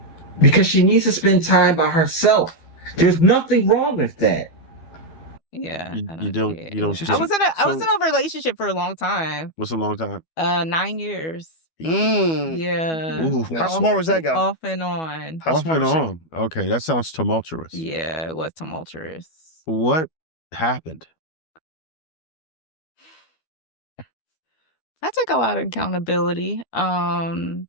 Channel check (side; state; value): right; late; 12 ms